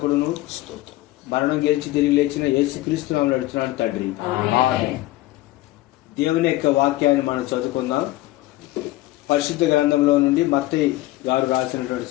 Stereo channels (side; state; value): right; quieter; 17.2 dB